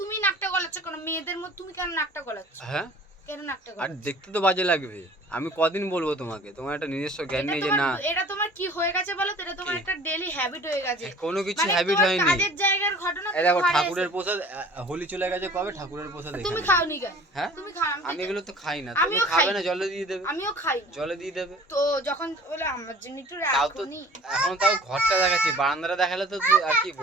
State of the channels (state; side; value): normal; both; correlation 0.47